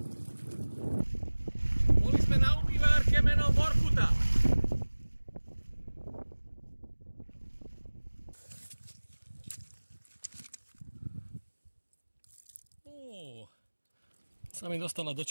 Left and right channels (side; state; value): both; inverted; correlation -1.00